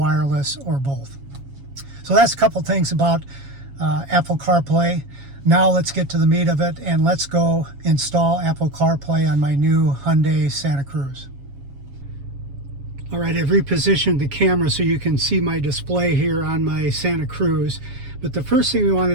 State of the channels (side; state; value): left; late; 7.2 ms